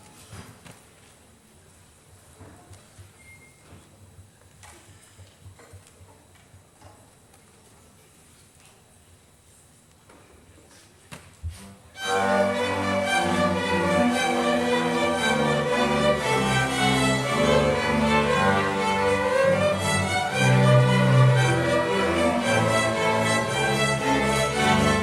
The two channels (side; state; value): both; identical; correlation 1.00